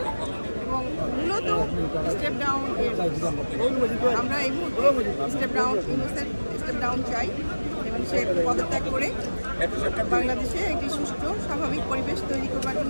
এবং মূলত স্টেপ ডাউন। আমরা এই মুহূর্তে স্টেপ ডাউন চাই এবং সে পদত্যাগ করে বাংলাদেশে একটি সুষ্ঠু স্বাভাবিক পরিবেশ তৈরি করবার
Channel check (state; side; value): inverted; both; correlation -1.00